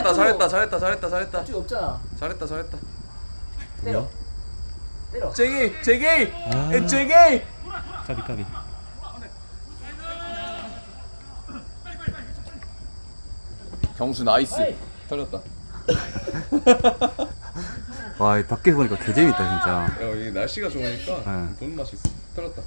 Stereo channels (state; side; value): inverted; both; correlation -1.00